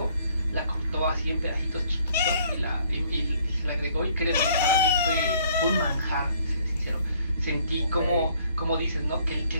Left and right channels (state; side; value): inverted; both; correlation -0.62